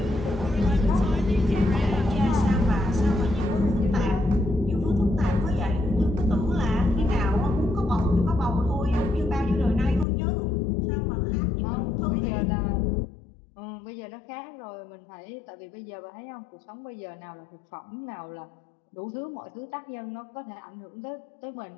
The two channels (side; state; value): right; drops out; at 10.1 s